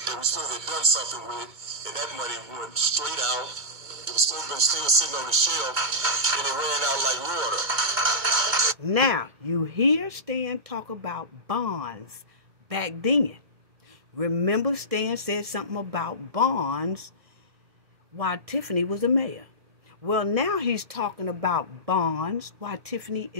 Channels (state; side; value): late; left; 2.2 ms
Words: we supposed to have done something with, and that money went straight out. It was supposed to have been still sitting on the shelf, and it ran out like water. Now, you hear Stan talk about bonds back then. Remember Stan said something about bonds while Tiffany was a mayor. Well, now he's talking about bonds while Tiffany